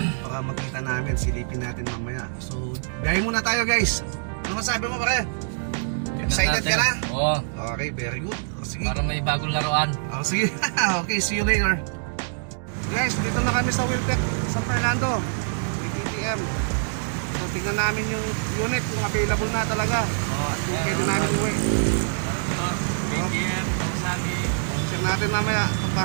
makita namin, silipin natin mamaya. So biyahe muna tayo guys. Ano masabi mo pare? Excited ka na? Oo. Okay, very good. O, sige. Para may bagong laruan. O, sige. Okay, see you later. Guys, dito na kami sa Wiltec, San Fernando. TTM. So tingnan namin yung unit kung available na talaga. At kung pwede namin uwi. BTM, Kawasaki. Check natin mamaya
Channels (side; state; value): left; silent; digital silence